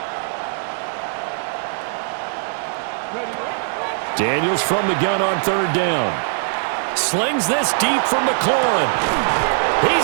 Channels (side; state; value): left; silent; digital silence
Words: Daniels from the gun on third down. Slings this deep from McLaurin.